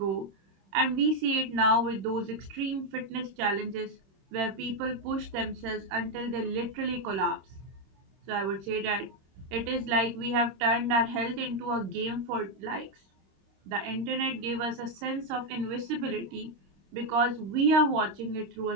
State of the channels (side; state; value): left; late; 26 ms